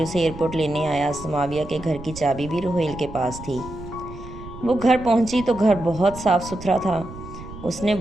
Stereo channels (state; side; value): noise; right; rumble, 14 dB below the sound